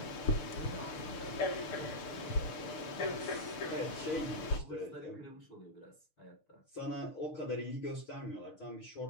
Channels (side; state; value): right; late; 6.5 ms